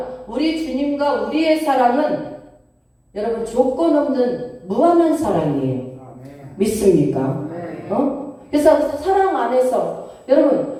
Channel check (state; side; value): identical; both; correlation 1.00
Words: 우리 주님과 우리의 사랑은 여러분 조건 없는 무한한 사랑이에요. 믿습니까? 그래서 사랑 안에서